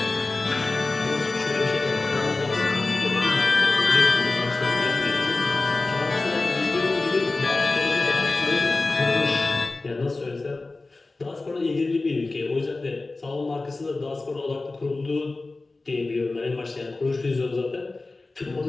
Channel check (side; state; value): right; quieter; 3.3 dB